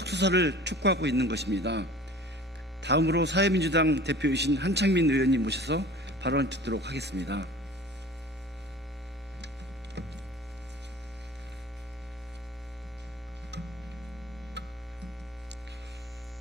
수사를 촉구하고 있는 것입니다. 다음으로 사회민주당 대표이신 한창민 의원님 모셔서 발언 듣도록 하겠습니다.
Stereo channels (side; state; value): both; normal; correlation 0.43